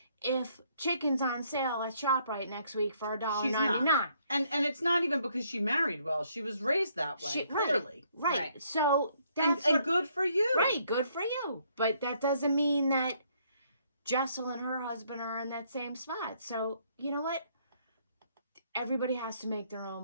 if chicken's on sale at ShopRite next week for She's not. $1.99. And it's not even because she married well. She was raised that way, clearly. Right. Right. So And, that's and what- good for you. Right, good for you. But that doesn't mean that Jessel and her husband are in that same spot. So, you know what? Everybody has to make their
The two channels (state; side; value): inverted; both; correlation -0.68